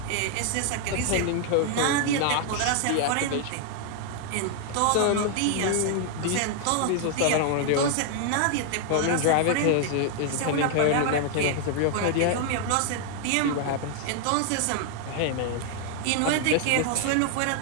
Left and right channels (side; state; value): both; different; correlation 0.00